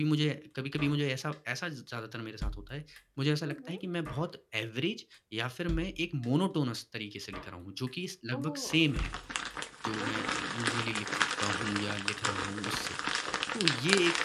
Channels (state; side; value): identical; both; correlation 1.00